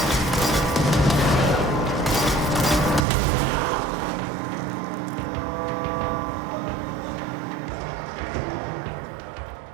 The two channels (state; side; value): drops out; left; at 3.1 s